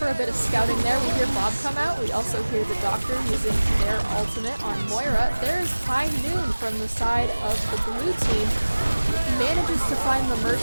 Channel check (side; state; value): both; inverted; correlation -1.00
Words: a bit of scouting there. We hear Bob come out. We also hear the Doctor using their ultimate on Moira. There's High Noon from the side of the blue team. Manages to find the